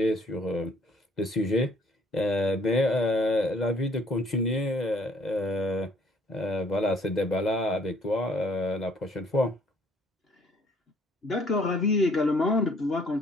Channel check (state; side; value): normal; both; correlation 0.61